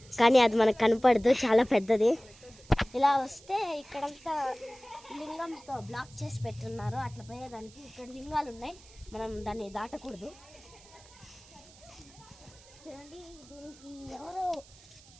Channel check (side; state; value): right; noise; hiss, 23 dB below the sound